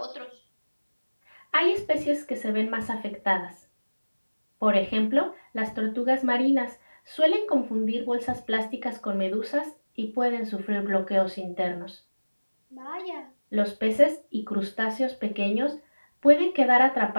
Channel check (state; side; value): inverted; both; correlation -1.00